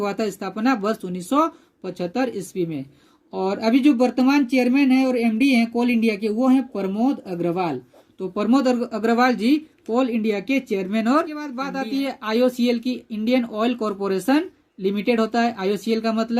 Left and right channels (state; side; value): identical; both; correlation 1.00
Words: था स्थापना वर्ष 1975 ईस्वी में। और अभी जो वर्तमान चेयरमैन है और एमडी हैं कोल इंडिया के वो हैं प्रमोद अग्रवाल। तो प्रमोद अग्रवाल जी कोल इंडिया के चेयरमैन। और के बाद बात आती है आईओसीएल की, इंडियन ऑयल कॉरपोरेशन लिमिटेड होता है आईओसीएल का